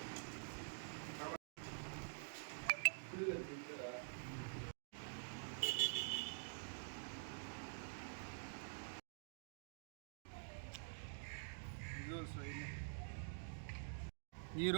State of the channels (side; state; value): left; silent; digital silence